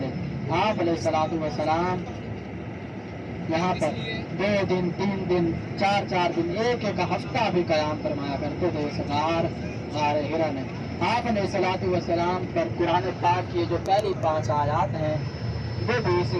آپ علیہ الصلوۃ والسلام یہاں پر 2 دن 3 دن 4 دن ایک ہفتہ بھی قیام فرمایا کرتے تھے اس غار ہرا میں۔ آپ علیہ الصلوۃ والسلام پر قرآن پاک کی جو پہلی 5 آیات ہیں وہ بھی اسی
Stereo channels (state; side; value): identical; both; correlation 1.00